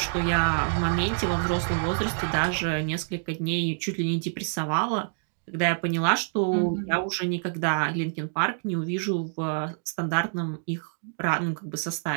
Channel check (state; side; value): silent; left; digital silence